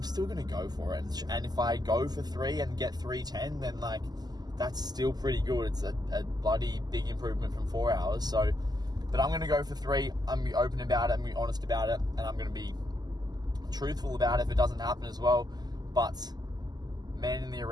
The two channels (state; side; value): late; left; 0.20 ms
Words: still going to go for it. And if I go for 3 and get 3:10, then like that's still pretty good. It's a bloody big improvement from 4 hours. So, but I'm going to go for 3. I'm going to be open about it. I'm going to be honest about it, and I'm going to be truthful about it if it doesn't happen as well. But man in the